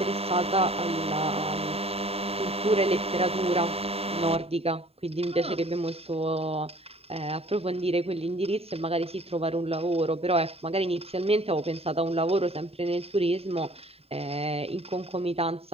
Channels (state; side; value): late; left; 0.29 ms